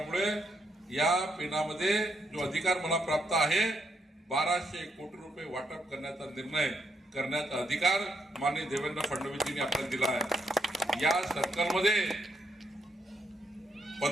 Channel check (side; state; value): both; normal; correlation 0.77